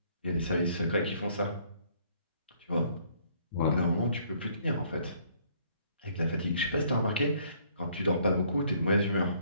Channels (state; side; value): inverted; both; correlation -0.63